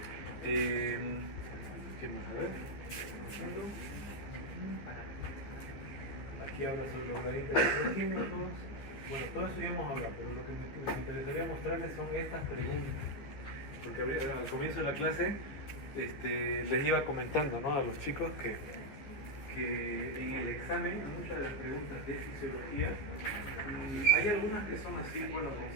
¿Qué más? A ver. Aquí habla sobre los gradientes electroquímicos. Bueno, todo eso ya hemos hablado, pero lo que me interesaría mostrarles son estas preguntas. Porque al comienzo de la clase les iba comentando, ¿no?, a los chicos que en el examen, muchas de las preguntas de fisiología, hay algunas que son así, bueno,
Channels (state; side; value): late; right; 15 ms